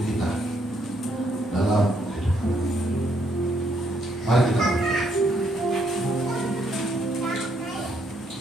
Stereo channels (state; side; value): normal; both; correlation 0.72